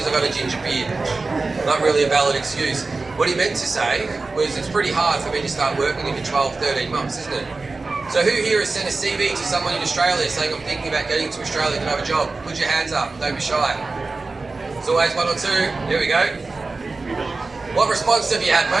I've got a ginger beard. Not really a valid excuse. What he meant to say was it's pretty hard for me to start working in 12, 13 months, isn't it? So who here has sent a CV to someone in Australia saying, I'm thinking about getting to Australia, can I have a job? Put your hands up, don't be shy. It's always 1 or 2. Here we go. What response have you had,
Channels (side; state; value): left; quieter; 3.7 dB